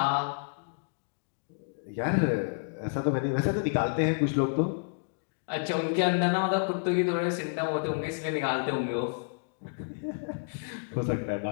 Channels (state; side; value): silent; right; digital silence